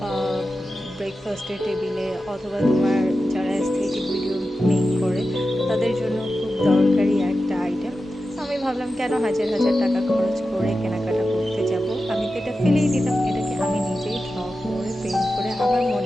ব্রেকফাস্টের টেবিলে অথবা তোমার যারা অ্যাস্থেটিক ভিডিও মেক করে তাদের জন্য খুব দরকারি একটা আইটেম। আমি ভাবলাম কেন হাজার হাজার টাকা খরচ করে কেনাকাটা করতে যাব, আমি তো এটা ফেলেই দিতাম, এটাকে আমি নিজেই ড্র করে পেইন্ট করে আমার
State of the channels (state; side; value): normal; both; correlation 0.92